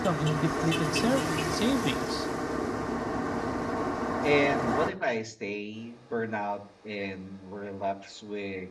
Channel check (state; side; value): identical; both; correlation 1.00